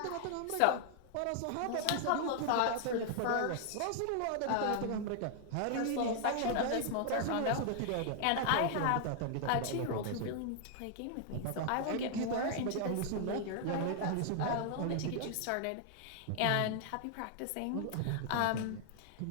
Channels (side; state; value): both; different; correlation 0.00